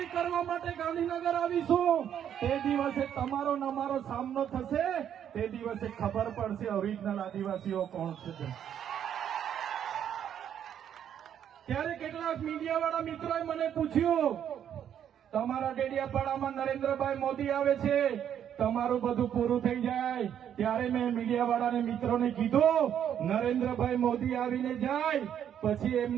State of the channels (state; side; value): quieter; left; 9.4 dB